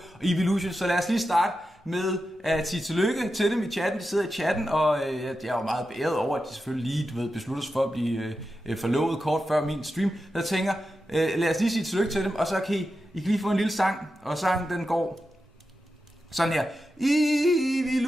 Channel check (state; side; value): normal; both; correlation 0.90